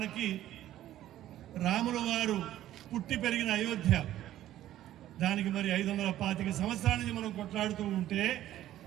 రాముల వారు పుట్టి పెరిగిన అయోధ్య, దానికి మరి 525 సంవత్సరాల నుంచి మనం కొట్లాడుతూ ఉంటే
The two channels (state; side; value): quieter; left; 13.2 dB